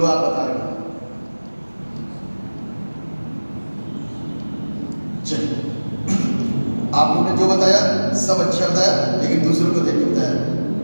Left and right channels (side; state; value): both; inverted; correlation -1.00